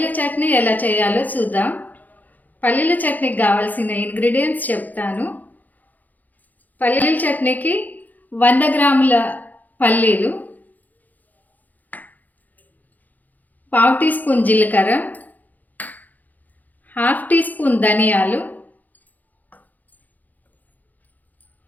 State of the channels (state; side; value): late; right; 0.082 ms